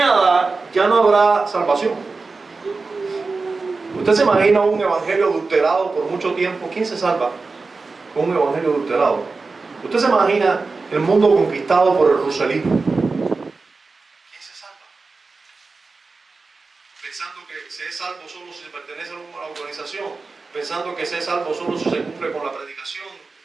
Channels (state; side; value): quieter; left; 4.0 dB